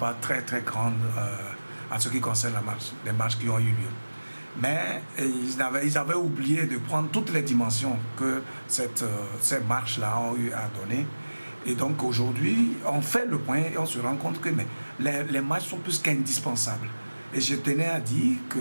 très grande en ce qui concerne les marches qui ont eu lieu. Mais ils avaient oublié de prendre toutes les dimensions que ces marches-là ont eu à donner. Et donc aujourd'hui, on fait le point et on se rend compte que les marches sont plus qu'indispensables. Et je tenais à dire que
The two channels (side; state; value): both; inverted; correlation -1.00